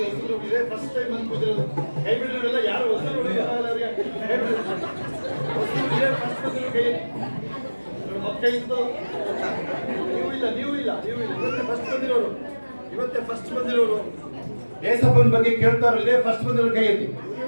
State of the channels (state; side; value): inverted; both; correlation -1.00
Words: ಫಸ್ಟ್ ಟೈಮ್ ಬಂದು ಕೂತಿರೋದು ಕೈ ಬಿಡೋಲ್ಲ. ಯಾರು ಹೊಸರು ಕೈ ಇತ್ತು. ನೀವು ಇಲ್ಲ ಇವತ್ತೇ ಫಸ್ಟ್ ಬಂದಿರೋರು. ಏಸಪ್ಪನ ಬಗ್ಗೆ ಕೇಳ್ತಾರೋ ಇದೇ ಫಸ್ಟ್ ಬಂದಿರೋರು ಕೈ ಎತ್ತಿ.